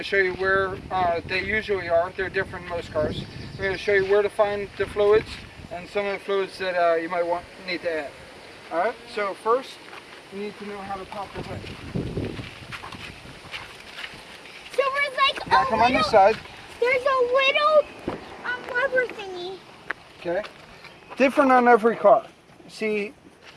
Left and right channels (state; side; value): identical; both; correlation 1.00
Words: show you where they usually are. They're different in most cars. We're going to show you where to find the fluids and some of the fluids that you might need to add. Alright, so first you need to know how to pop the hood. So there's like come on this side. There's a little lever thingy. Okay. Different on every car. See,